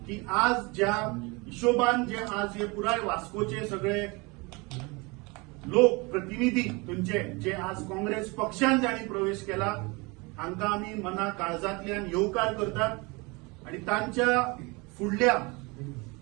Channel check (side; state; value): left; quieter; 26.9 dB